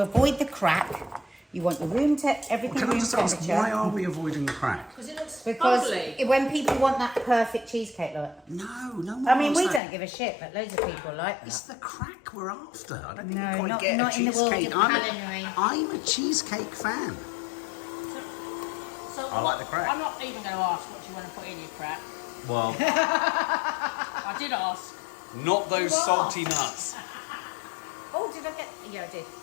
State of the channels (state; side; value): drops out; right; at 9.8 s